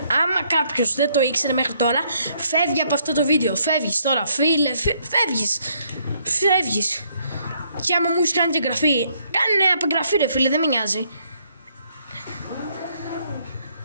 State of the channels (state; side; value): inverted; both; correlation -0.70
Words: Άμα κάποιος δεν το ήξερε μέχρι τώρα, φεύγει από αυτό το βίντεο. Φεύγεις τώρα, φίλε, φεύγεις. Και άμα μου έχεις κάνει και εγγραφή, κάνε απεγγραφή ρε φίλε, δεν με νοιάζει.